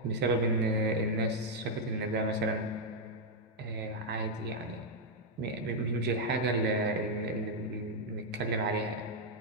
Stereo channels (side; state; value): both; normal; correlation -0.02